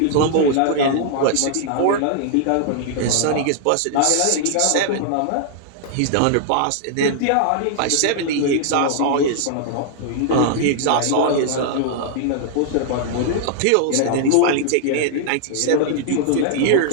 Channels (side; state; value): both; different; correlation -0.01